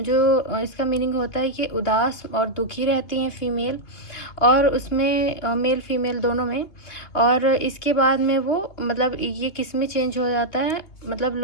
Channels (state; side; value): late; right; 2.9 ms